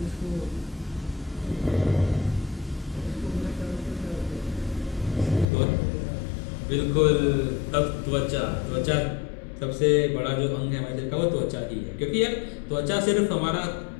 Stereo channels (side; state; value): right; drops out; at 5.5 s